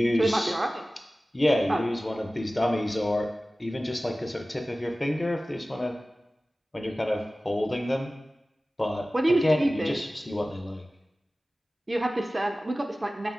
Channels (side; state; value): both; normal; correlation 0.97